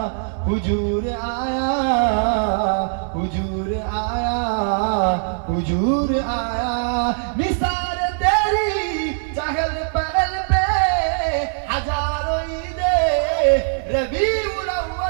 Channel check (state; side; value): silent; left; 65 dB below the other